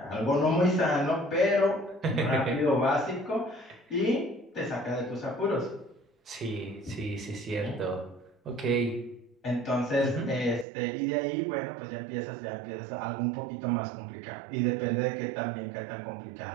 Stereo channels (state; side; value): drops out; left; at 10.7 s